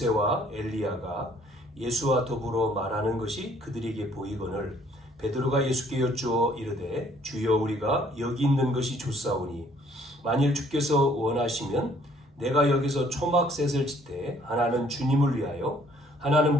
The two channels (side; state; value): both; normal; correlation 0.61